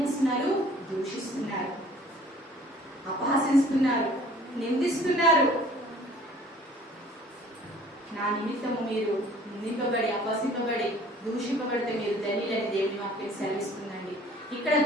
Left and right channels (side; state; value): both; normal; correlation 0.52